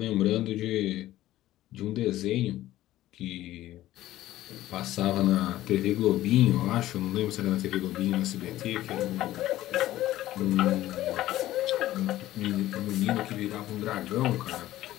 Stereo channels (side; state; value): right; quieter; 14.8 dB